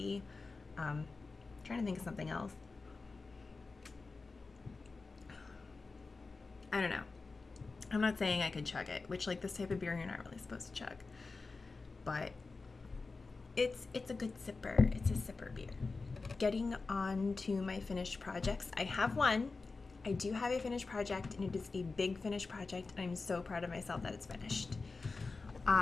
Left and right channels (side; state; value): right; quieter; 4.0 dB